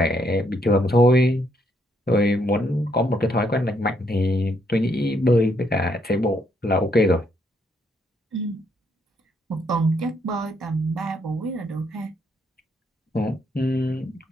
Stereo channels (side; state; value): both; normal; correlation 0.73